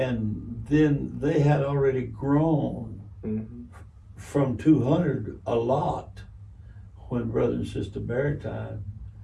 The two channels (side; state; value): both; identical; correlation 1.00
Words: then they had already grown Mm-hmm. from 200 a lot when Brother and Sister Barrett died.